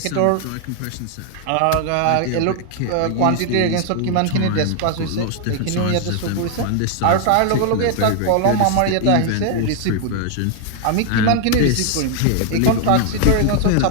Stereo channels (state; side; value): different; both; correlation 0.00